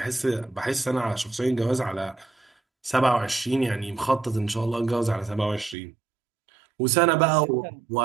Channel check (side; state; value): left; drops out; at 5.8 s